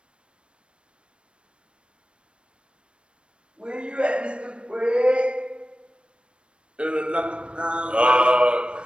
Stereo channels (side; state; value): left; late; 0.057 ms